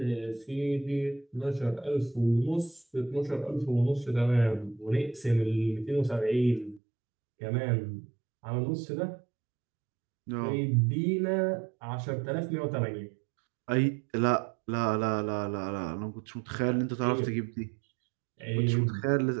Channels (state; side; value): drops out; left; at 6.8 s